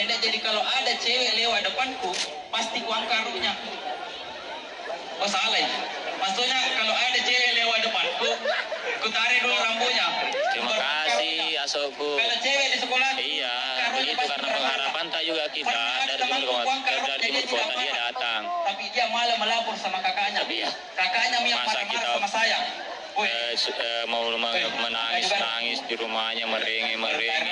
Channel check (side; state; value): both; identical; correlation 1.00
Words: jadi kalau ada cewek lewat depanku, pasti ku angkarunya. Oh salah ya. Maksudnya kalau ada cewek lewat depanku, ku tarik dulu rambutnya. Terima kasih Asokku. Kalau cewek di sekolah, iya, begitu karena pengharapan tak juga kita dari timur kota dia datang. Tapi dia malah melapor sama kakaknya. Kakaknya yang marah-marah sama saya. Mau menangis di rumahnya, merengek, mengemis.